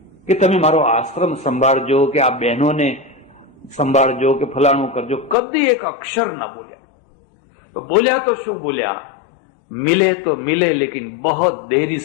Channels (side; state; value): right; drops out; at 5.4 s